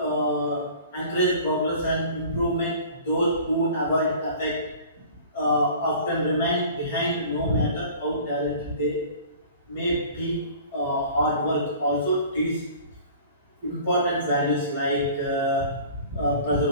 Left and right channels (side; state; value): both; inverted; correlation -0.45